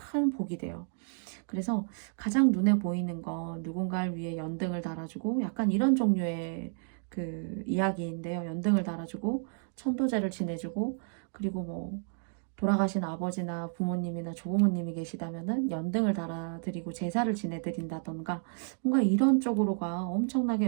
복이 돼요. 그래서 가장 눈에 보이는 건 누군가를 위해 연등을 달아주고 약간 이런 종류의 그 이야기인데요. 연등을 달아주고 천도제를 지내주고 그리고 뭐 돌아가신 아버지나 부모님이나 조부모님이 계시다면은 연등을 달아드리고 제사를 지내드린다던가 뭔가 이런 쪽으로가 엄청나게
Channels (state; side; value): silent; left; 57 dB below the other